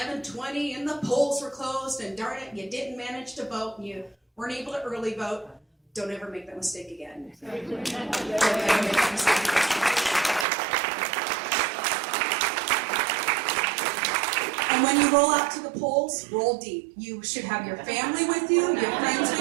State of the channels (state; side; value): drops out; left; at 10.5 s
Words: and the polls were closed and darn it, you didn't manage to vote and you weren't able to early vote, don't ever make that mistake again. Don't ever make that mistake again. And when you roll out to the polls, roll deep. You should have your family with you, your friends